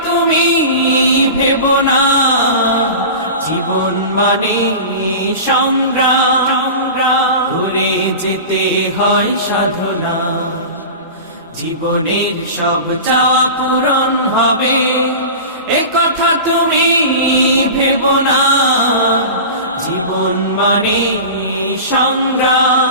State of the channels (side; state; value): both; inverted; correlation -0.32